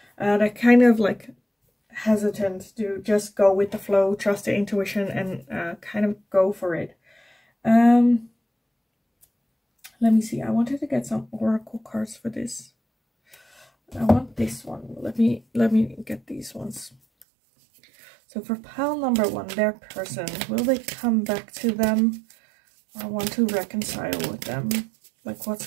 They're kind of like hesitant to just go with the flow, trust the intuition, and kind of go for it. Let me see. I wanted to get some oracle cards for this. I want this one. Let me get these ones. So for pile number 1, their person, will they come back to them? I want to reconcile with them. Like,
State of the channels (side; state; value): left; drops out; at 17.2 s